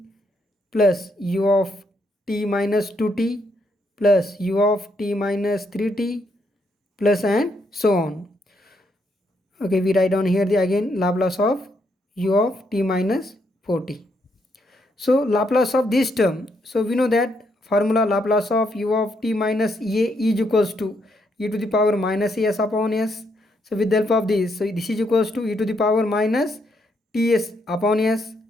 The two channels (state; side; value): normal; both; correlation 0.76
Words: plus u of t minus 2t plus u of t minus 3t plus, and so on. Okay, we write down here the again Laplace of u of t minus 4t. So Laplace of this term, so we know that formula Laplace of u of t minus a is equals to e to the power minus as upon s. So with the help of this, so this is equals to e to the power minus ts upon s